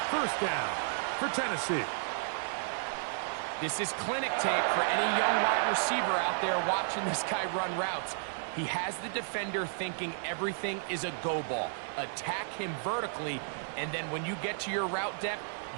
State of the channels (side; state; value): left; silent; 56 dB below the other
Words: First down for Tennessee. This is clinic tape for any young wide receiver out there watching this guy run routes. He has the defender thinking everything is a go ball. Attack him vertically, and then when you get to your route depth,